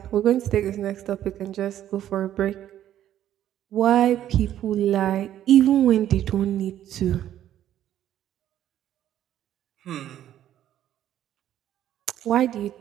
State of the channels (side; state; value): left; quieter; 11.6 dB